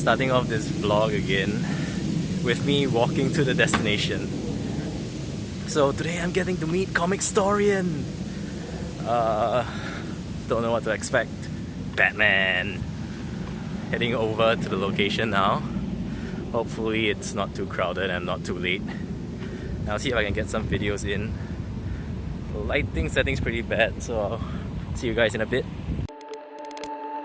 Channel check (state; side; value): identical; both; correlation 1.00